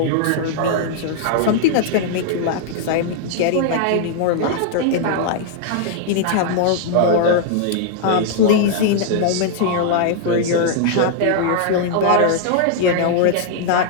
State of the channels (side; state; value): both; different; correlation -0.01